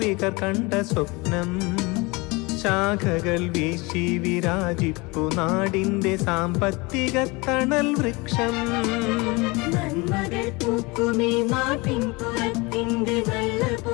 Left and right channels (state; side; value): quieter; right; 25.5 dB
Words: കണ്ട സ്വപ്നം. ശാഖകൾ വീശി വിരാജിപ്പു നാടിൻ്റെ സാമ്പത്തിക തണൽ വൃക്ഷം. നന്മകൾ പൂക്കുമീ നാട്ടിൻ പുറത്തിൻ്റെ നല്ല